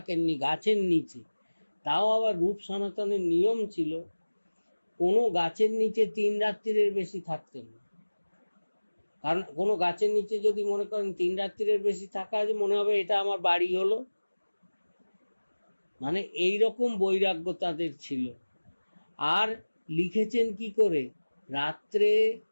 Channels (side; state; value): both; inverted; correlation -1.00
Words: গাছের নিচে। তাও আবার রূপ সনাতনের নিয়ম ছিল কোনো গাছের নিচে 3 রাত্রির বেশি থাকতেন না। কারণ কোনো গাছের নিচে যদি মনে করেন 3 রাত্রির বেশি থাকা আছে, মনে হবে এটা আমার বাড়ি হলো। মানে এইরকম বৈরাগ্য তাদের ছিল। আর লিখেছেন কি করে, রাত্রে